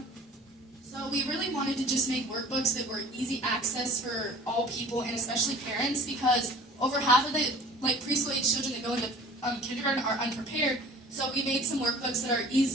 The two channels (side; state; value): both; normal; correlation 0.46